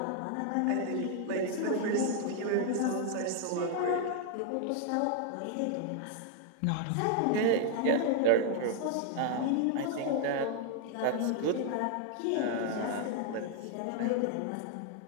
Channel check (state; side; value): different; both; correlation 0.00